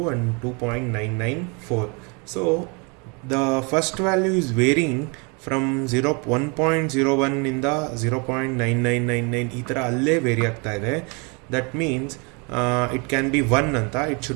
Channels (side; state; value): left; quieter; 32.3 dB